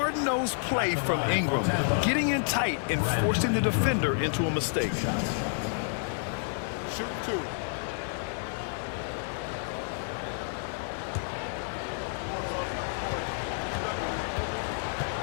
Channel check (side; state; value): right; silent; digital silence